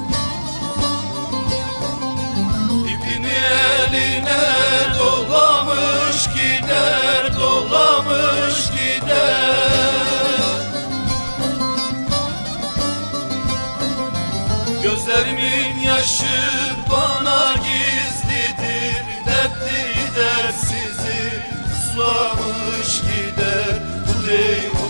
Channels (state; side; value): inverted; both; correlation -1.00